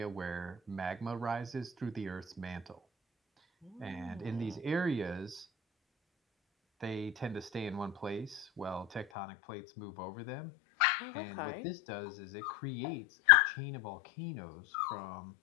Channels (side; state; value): right; drops out; at 9.1 s